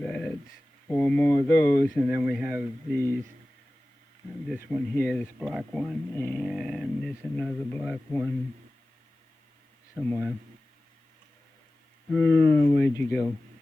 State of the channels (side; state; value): both; normal; correlation 0.96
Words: 4 more of those. And then we have these. This one here, this black one. And there's another black one somewhere. Where'd you go?